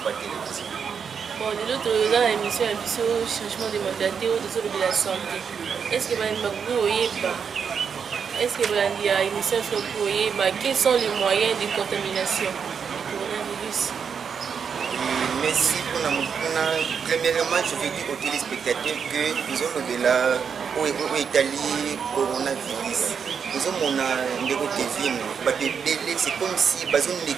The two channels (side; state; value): left; quieter; 6.7 dB